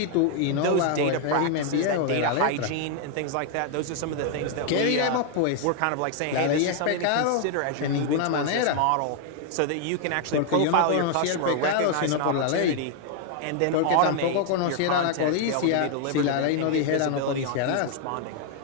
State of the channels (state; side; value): different; both; correlation 0.00